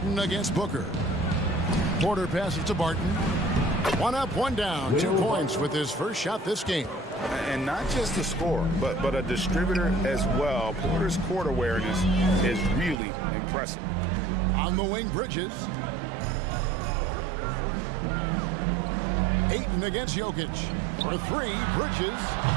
against Booker. Porter passes to Barton. One up, one down. 2 points with his first shot this game. And not just a scorer, but a distributor as well. Porter's court awareness is really impressive. On the wing, Bridges. Ayton against Jokic. For 3, Bridges.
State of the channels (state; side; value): drops out; left; at 13.0 s